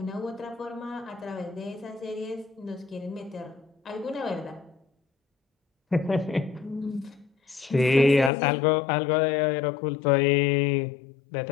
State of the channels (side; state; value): right; drops out; at 8.3 s